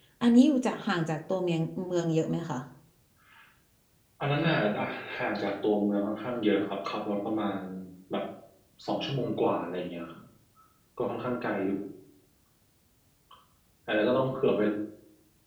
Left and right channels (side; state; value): both; identical; correlation 1.00